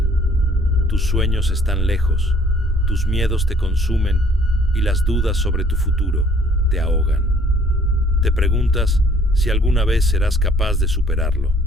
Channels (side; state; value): both; normal; correlation 0.59